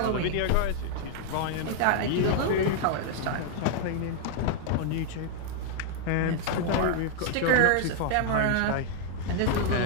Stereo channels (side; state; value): both; different; correlation 0.00